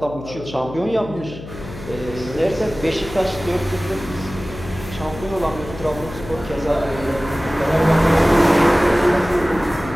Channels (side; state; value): left; noise; hum, 13 dB below the sound